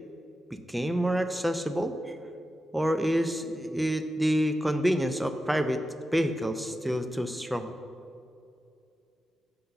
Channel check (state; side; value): normal; both; correlation 0.91